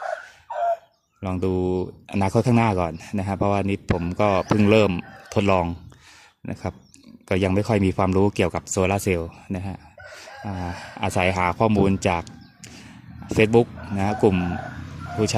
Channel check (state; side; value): identical; both; correlation 1.00